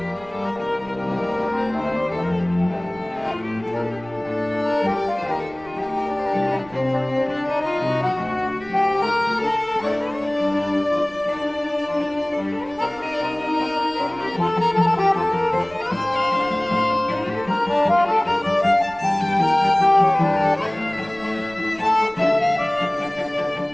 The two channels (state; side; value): noise; right; rumble, 24 dB below the sound